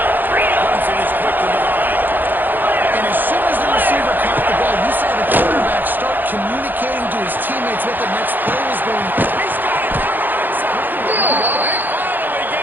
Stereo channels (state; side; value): late; left; 0.089 ms